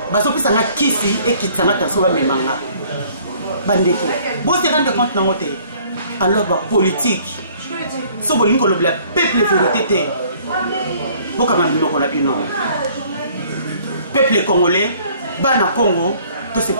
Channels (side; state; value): both; inverted; correlation -0.57